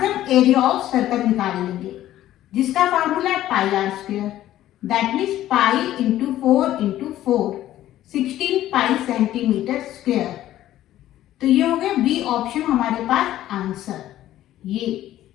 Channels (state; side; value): quieter; right; 13.4 dB